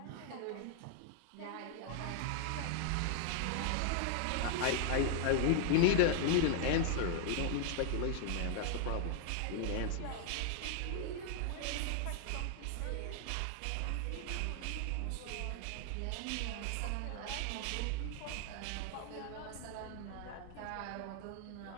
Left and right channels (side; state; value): both; different; correlation 0.00